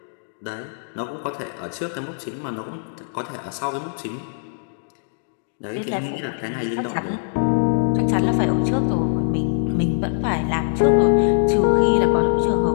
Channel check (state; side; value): silent; right; digital silence